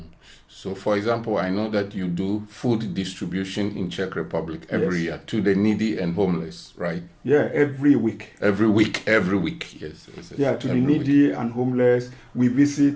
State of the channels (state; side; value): identical; both; correlation 1.00